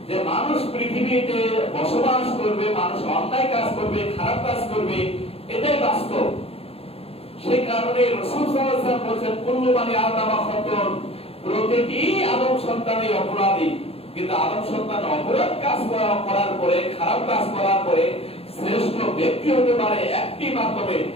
যে মানুষ পৃথিবীতে বসবাস করবে, মানুষ অন্যায় কাজ করবে, খারাপ কাজ করবে, এটাই বাস্তব। সেই কারণে রাসূল সাল্লাল্লাহু আলাইহি ওয়াসাল্লাম বলেছেন কুল্লু বানি আদম খাতাউন, প্রতিটি আদম সন্তানই অপরাধী। কিন্তু আদম সন্তান অপরাধ কাজ করার পরে, খারাপ কাজ করার পরে শ্রেষ্ঠ ব্যক্তি হতে পারে একটি মাধ্যমে,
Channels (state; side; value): late; right; 0.28 ms